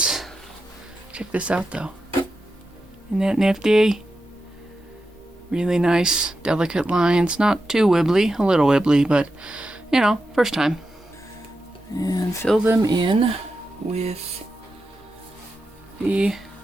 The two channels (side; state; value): both; normal; correlation 0.89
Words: Check this out though. Isn't that nifty? Really nice, delicate lines. Not too wibbly, a little wibbly, but you know, first time. And fill them in with the